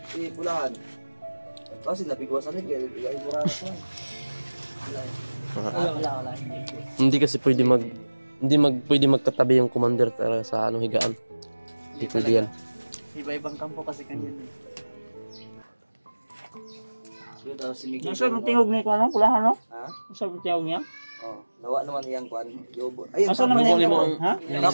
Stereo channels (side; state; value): both; inverted; correlation -1.00